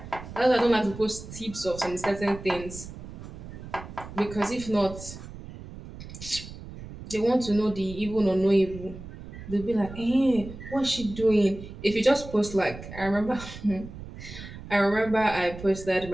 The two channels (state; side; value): noise; right; rumble, 13 dB below the sound